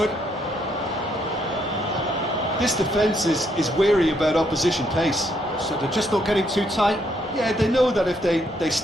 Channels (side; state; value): both; normal; correlation 0.73